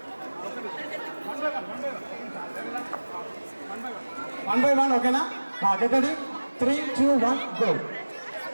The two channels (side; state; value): both; inverted; correlation -1.00